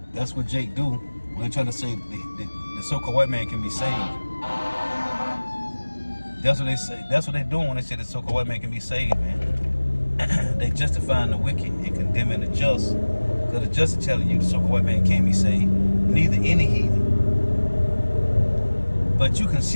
That's what Jake do when they're trying to say the so-called white man can be saved. That's what they say. That's what they're doing when they say the so-called white man can be saved, man. They justifying the wicked and condemning the just. Because the just is telling you the so-called white man can't be saved. Neither any heathen. But you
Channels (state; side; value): inverted; both; correlation -1.00